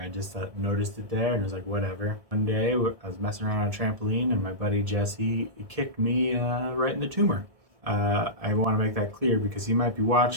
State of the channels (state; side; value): late; left; 1.6 ms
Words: just noticed it there and was like, whatever. One day, I was messing around on a trampoline, and my buddy Jesse kicked me right in the tumor. I want to make that clear because he might be